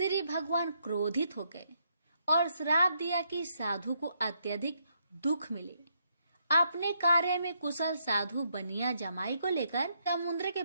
भगवान क्रोधित हो गए और श्राप दिया कि साधु को अत्यधिक दुख मिले। अपने कार्य में कुशल साधु बनिया जमाई को लेकर समुद्र के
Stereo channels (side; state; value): both; inverted; correlation -0.76